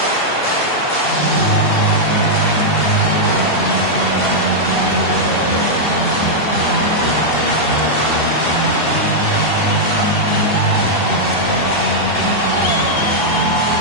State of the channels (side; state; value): right; late; 2.7 ms